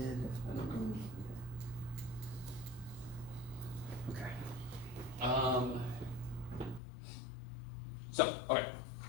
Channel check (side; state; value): right; drops out; at 6.8 s